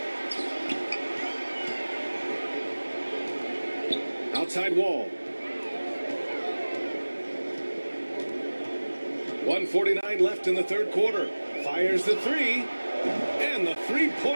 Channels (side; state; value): both; inverted; correlation -1.00